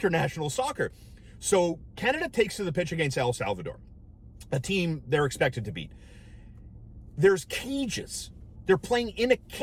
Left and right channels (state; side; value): identical; both; correlation 1.00